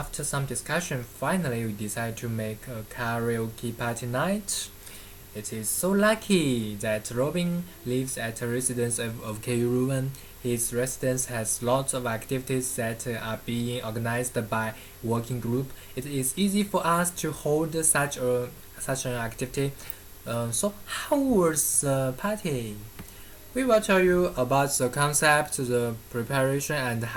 some discussion, finally we decided to make a karaoke party night. It is so lucky that Robin lives at a residence of KU Ruan. His residence has lots of activities that are being organized by working group. It is easy for us to hold such an activity. So how was the party? We will tell you about the concept, the preparation, and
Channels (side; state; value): left; noise; hum, 24 dB below the sound